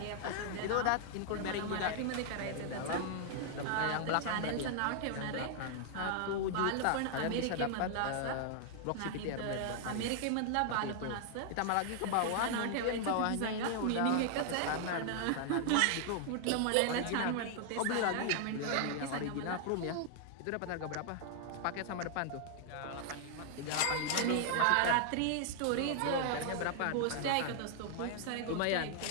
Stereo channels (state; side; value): different; both; correlation 0.00